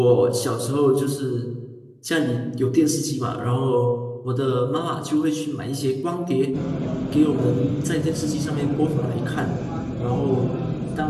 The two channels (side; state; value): both; identical; correlation 1.00